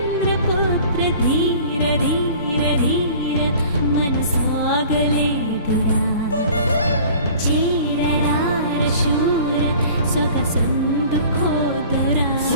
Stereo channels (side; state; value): both; inverted; correlation -0.46